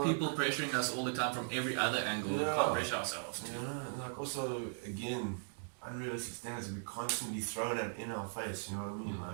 people pressuring us all the time from every other angle. We can't pressure ourselves. Yeah, like also, again, unrealistic standards we constantly thrown in our face, you know what I mean?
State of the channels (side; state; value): left; silent; digital silence